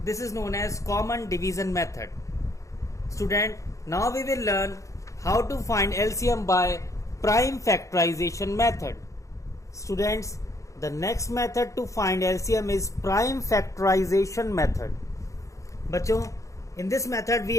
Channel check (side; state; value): right; late; 0.15 ms